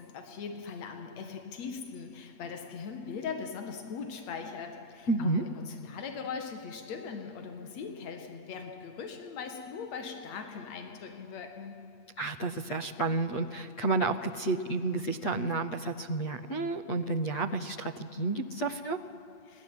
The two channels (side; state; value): right; late; 8.5 ms